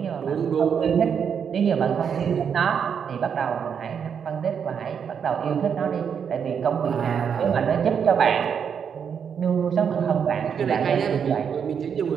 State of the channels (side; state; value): left; quieter; 7.3 dB